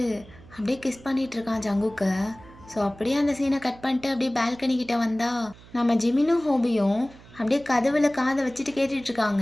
அப்படியே கிஸ் பண்ணிகிட்டு இருக்கான் ஜங்குக்கை. ஸோ அப்படியே அந்த சீனை கட் பண்ணிட்டு அப்படியே பால்கனி கிட்ட வந்தா நம்ம ஜிமினும் ஹோபியும் அப்படியே கதவுல காதை வச்சுட்டு கேட்டுட்டு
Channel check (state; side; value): noise; right; hum, 22 dB below the sound